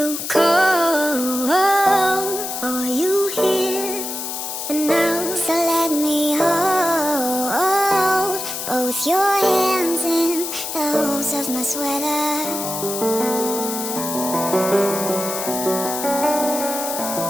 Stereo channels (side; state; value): left; noise; hiss, 5 dB below the sound